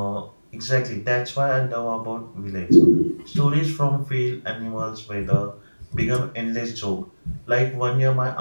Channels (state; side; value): inverted; both; correlation -1.00